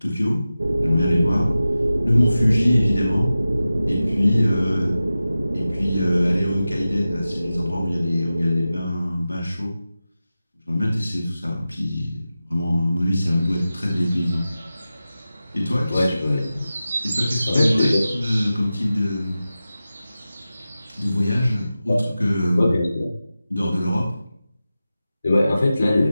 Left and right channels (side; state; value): both; inverted; correlation -0.94